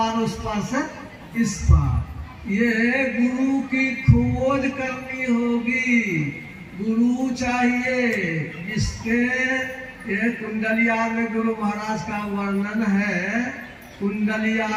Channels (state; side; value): identical; both; correlation 1.00